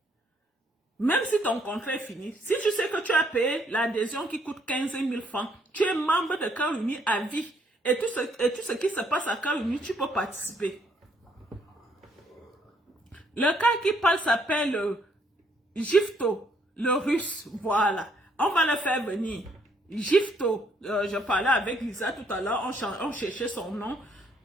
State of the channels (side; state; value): both; normal; correlation 0.69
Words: Même si ton contrat est fini, si tu sais que tu as payé l'adhésion qui coûte 15 000 francs, tu es membre de Cœur Uni à vie. Et tout ce qui se passe à Cœur Uni, tu peux participer. Le cas qui parle s'appelle Gifto, le russe. Voilà. On va le faire venir. Gifto. Je parlais avec Lisa tout à l'heure. On cherchait son nom.